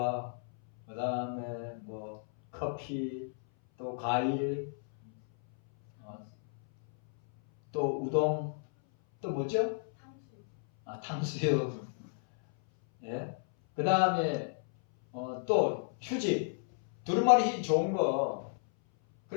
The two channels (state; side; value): silent; right; 56 dB below the other